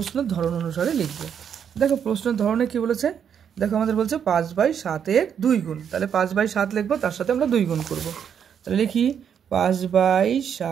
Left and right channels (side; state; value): left; quieter; 8.1 dB